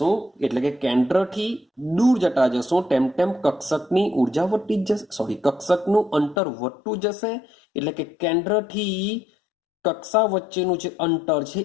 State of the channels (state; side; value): drops out; right; at 6.4 s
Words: એટલે કે કેન્દ્રથી દૂર જતા જશું તેમ તેમ કક્ષકની ઉર્જા વધતી જ જશે, કક્ષકનું અંતર વધતું જશે. એટલે કે કેન્દ્રથી કક્ષા વચ્ચેનું જે અંતર છે